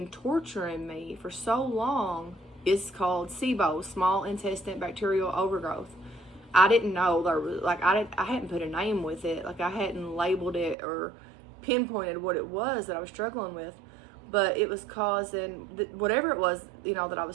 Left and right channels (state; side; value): drops out; left; at 10.8 s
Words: torturing me for so long is called Sibo, small intestine bacterial overgrowth. I didn't know there was, I hadn't put a name with it. I hadn't labeled it or pinpointed what it was that I was struggling with, but it was causing, whatever it was, that I